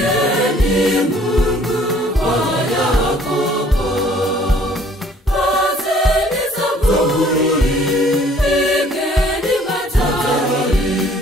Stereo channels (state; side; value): normal; both; correlation 0.57